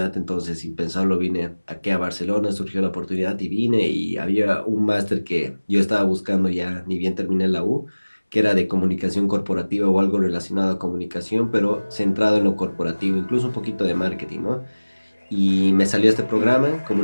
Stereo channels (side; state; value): both; inverted; correlation -1.00